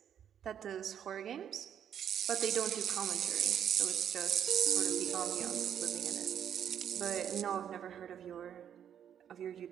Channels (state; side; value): quieter; left; 9.2 dB